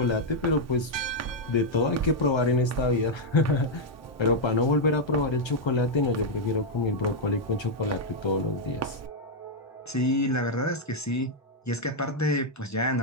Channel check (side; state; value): both; normal; correlation -0.02